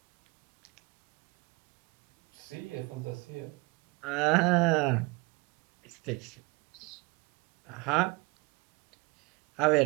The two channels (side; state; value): left; quieter; 26.3 dB